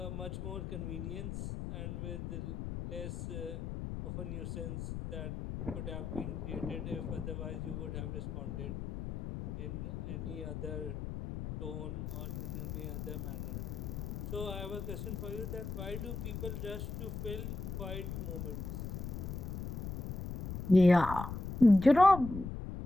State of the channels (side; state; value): left; noise; rumble, 5 dB below the sound